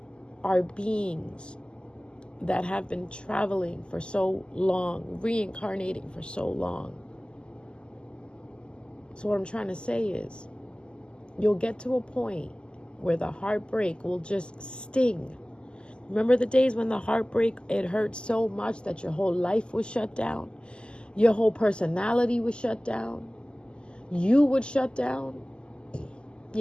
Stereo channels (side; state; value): right; late; 0.049 ms